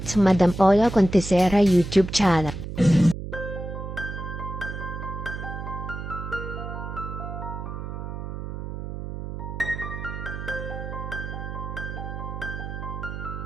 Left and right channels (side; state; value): right; noise; hum, 7 dB below the sound